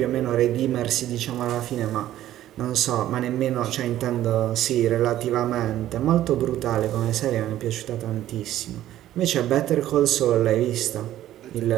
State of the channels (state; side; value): quieter; left; 13.2 dB